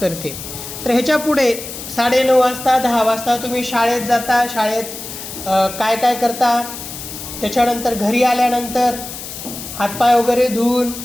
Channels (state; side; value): noise; left; hiss, 10 dB below the sound